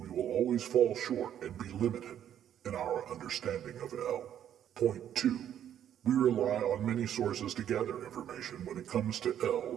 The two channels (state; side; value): quieter; left; 10.2 dB